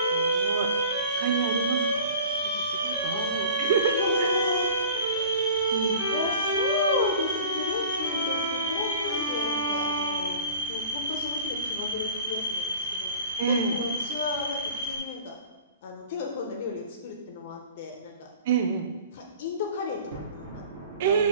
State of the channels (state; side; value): inverted; both; correlation -0.43